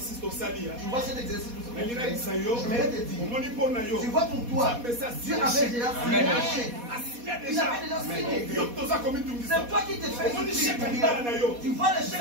au sali. Tu vois cet exercice que Je vais te dire. Tu vois pour toi, Dieu avait déjà signé un chèque. Il avait déjà signé. C'est toi qui te fais souffrir. Tu vois le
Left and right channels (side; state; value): left; late; 4.2 ms